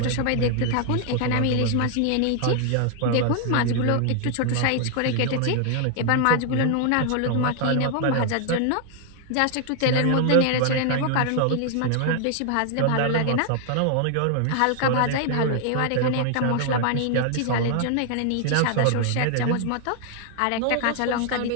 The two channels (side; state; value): both; different; correlation 0.00